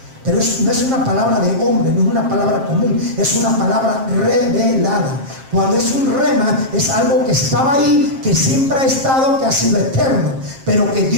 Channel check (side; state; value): left; late; 7.5 ms